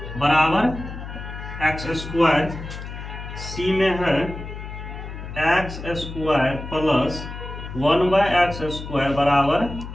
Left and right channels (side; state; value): left; noise; hum, 10 dB below the sound